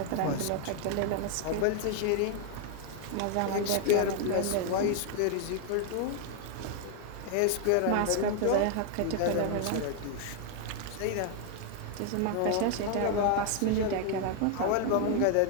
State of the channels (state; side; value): different; both; correlation 0.00